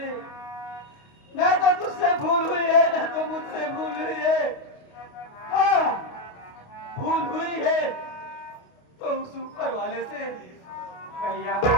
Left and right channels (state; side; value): late; right; 29 ms